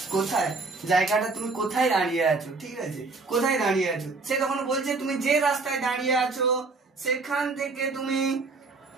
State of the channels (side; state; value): left; quieter; 3.8 dB